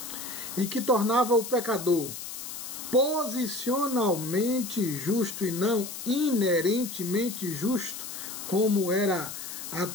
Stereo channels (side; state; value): left; noise; hiss, 9 dB below the sound